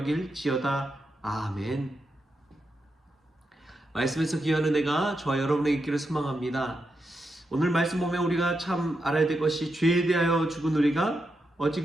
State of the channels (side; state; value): both; normal; correlation 0.85